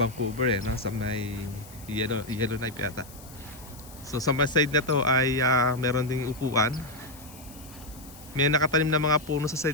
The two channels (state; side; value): noise; left; hiss, 20 dB below the sound